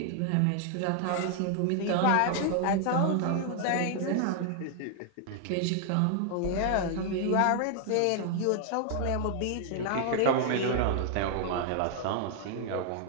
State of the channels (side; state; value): both; different; correlation 0.00